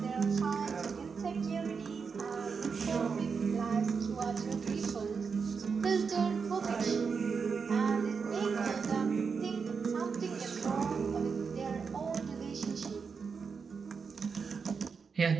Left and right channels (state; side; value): quieter; left; 5.6 dB